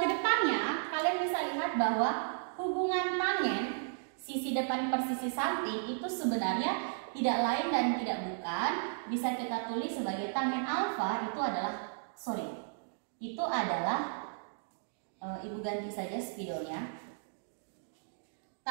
kedepannya kalian bisa lihat bahwa hubungan tangen sisi depan per sisi samping itu sebenarnya tidak lain dan tidak bukan, bisa kita tulis sebagai tangen alfa itu adalah ibu ganti saja spidolnya.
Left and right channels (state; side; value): silent; left; digital silence